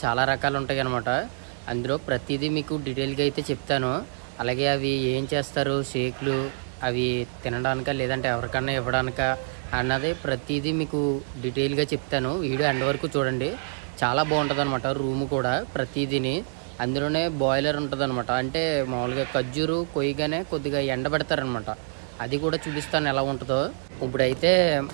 చాలా రకాలు ఉంటాయి అనమాట. అందులో ప్రతిదీ మీకు డీటెయిల్గా అయితే చెప్తాను. అలాగే అవి ఏం చేస్తారు, షేక్లు అవి తినడానికా లేదంటే ఎవరికన్నా ఇవ్వడానికా అన్నది ప్రతిదీ మీకు డీటెయిల్గా చెప్తాను. వీడియో ఎండ్ వరకు చూడండి, చాలా బాగుంటుంది అనమాట. రూమ్ కూడా ప్రతిదీని అందులోనే బాయిలర్ ఉంటుంది అనమాట. అంటే మామూలుగా ఖర్జూరు కొయ్యగానే కొద్దిగా ఎండబెడతారనమాట. అది కూడా చూపిస్తాను ఎలా ఉంటుందో. ఇప్పుడైతే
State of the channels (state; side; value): silent; left; digital silence